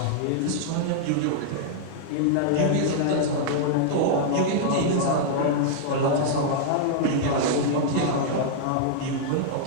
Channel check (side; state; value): both; different; correlation -0.01